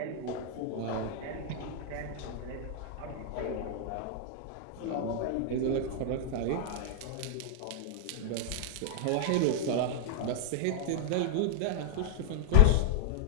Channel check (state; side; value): different; both; correlation 0.00